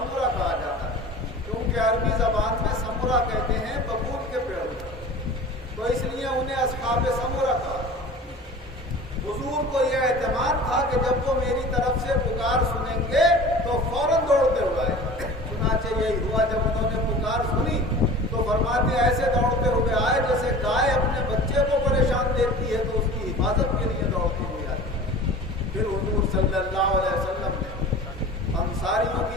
کہا جاتا ہے، کیونکہ عربی زبان میں سمرہ کہتے ہیں ببول کے پیڑ کو، تو اس لیے انہیں اصحاب سمرہ کہا۔ حضور کو یہ اعتماد تھا کہ جب وہ میری طرف سے پکار سنیں گے تو فوراً دوڑتے ہوئے آئے۔ چنانچہ یہی ہوا، جب انہوں نے پکار سنی تو فرماتے ایسے دوڑتے ہوئے آئے جیسے گائے اپنے بچے کو پریشان دیکھتی ہے تو اس کی حفاظت کے لیے دوڑتی ہوئی آتی۔ پھر حضور صلی اللہ علیہ وسلم نے انصاریوں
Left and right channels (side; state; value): both; normal; correlation 0.39